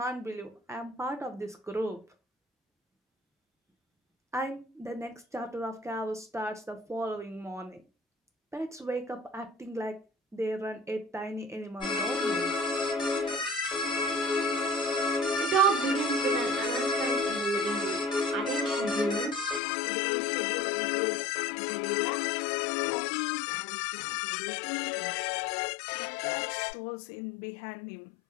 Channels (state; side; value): drops out; right; at 19.6 s